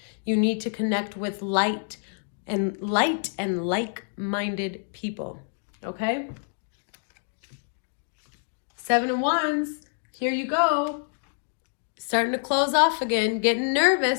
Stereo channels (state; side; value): silent; right; digital silence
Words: You need to connect with light and like-minded people. Okay? 7 of Wands. Here you go. Starting to close off again, getting